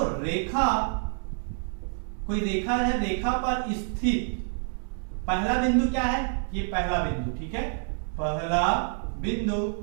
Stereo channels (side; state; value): left; silent; 60 dB below the other